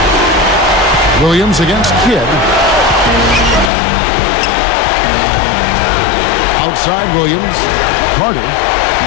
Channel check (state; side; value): drops out; right; at 3.7 s